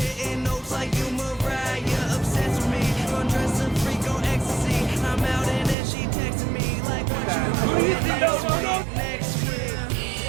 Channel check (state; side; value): drops out; left; at 5.8 s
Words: notes like you Mariah. Obsessed with me, undressing freak on ecstasy. I'm out and then she texting me like, what you doing next week?